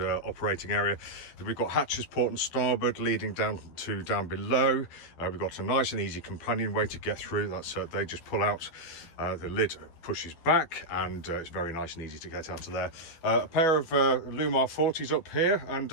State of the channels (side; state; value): right; late; 12 ms